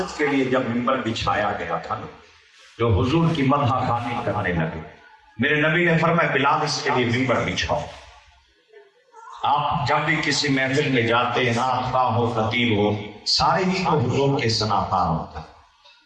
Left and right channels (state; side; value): identical; both; correlation 1.00